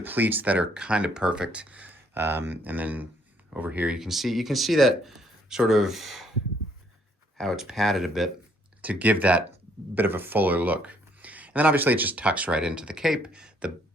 that are kind of perfect. And then over here, you can see that sort of how it's padded a bit to give that bit of a fuller look. And then obviously it just tucks right into the cape.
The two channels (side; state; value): both; normal; correlation 0.67